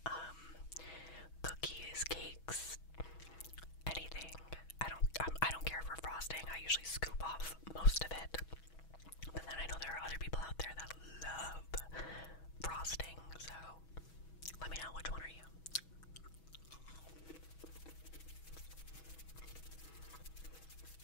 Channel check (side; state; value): right; late; 6.2 ms